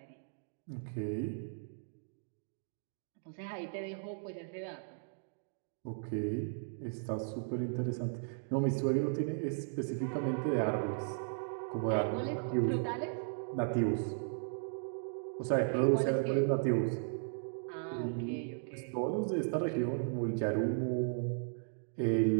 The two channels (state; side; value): silent; left; digital silence